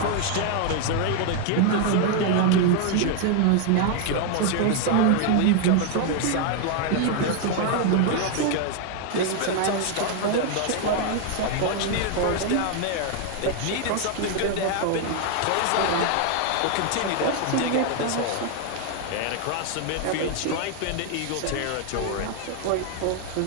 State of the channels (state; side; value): different; both; correlation 0.00